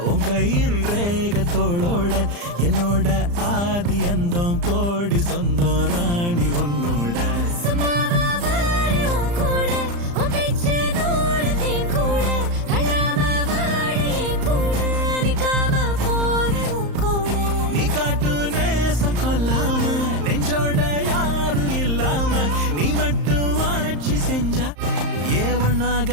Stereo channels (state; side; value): late; left; 35 ms